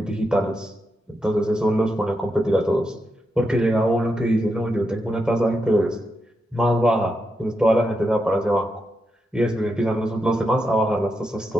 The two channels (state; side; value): normal; both; correlation 0.85